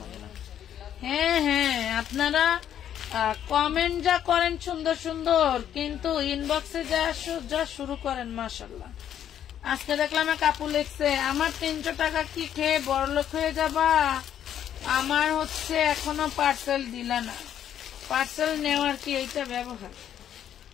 হ্যাঁ হ্যাঁ, আপনারা কমেন্ট যা করেন সুন্দর সুন্দর, কিন্তু ইনবক্সে যা শুরু করেন মাশাআল্লাহ। আজকে দেখলাম এক আপু লিখছে, আমার 300 টাকা কি খেয়ে বড়লোক হয়ে যাবা? আমার হচ্ছে এখনো পার্সেল দিলা না। পার্সেল নেওয়ার কি এইটা ব্যবহার?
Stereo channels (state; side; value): quieter; right; 10.1 dB